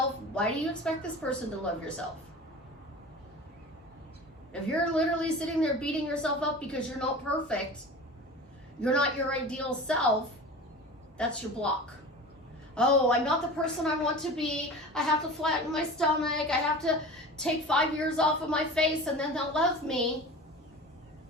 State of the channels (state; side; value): normal; both; correlation 0.35